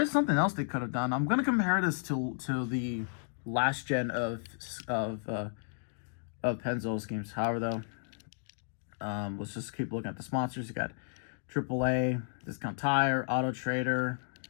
something else they could have done. I'm gonna compare this to the last gen of Pennzoil's games. However, though, let's just keep looking at the sponsors. You got AAA, Discount Tire, Auto Trader,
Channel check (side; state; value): right; silent; digital silence